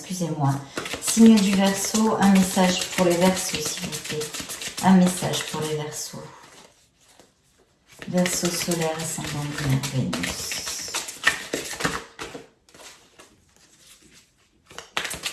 Signe du Verseau, un message pour les Verseaux, s'il vous plaît. Un message pour les Verseaux. Verseau solaire, ascendant lunaire, Vénus.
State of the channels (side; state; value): both; identical; correlation 1.00